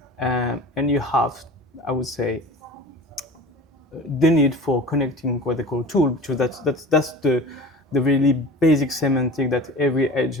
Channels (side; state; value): both; normal; correlation 0.37